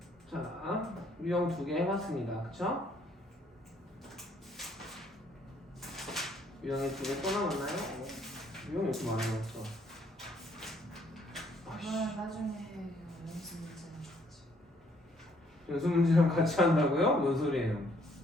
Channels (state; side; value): normal; both; correlation 0.66